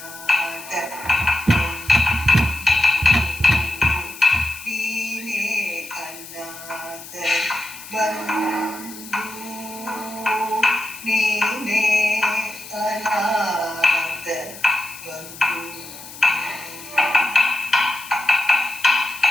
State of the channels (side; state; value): left; noise; hiss, 15 dB below the sound